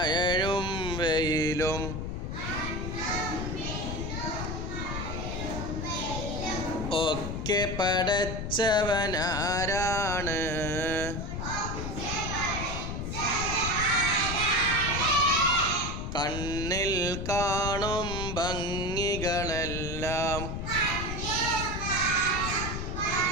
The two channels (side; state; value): left; noise; rumble, 4 dB below the sound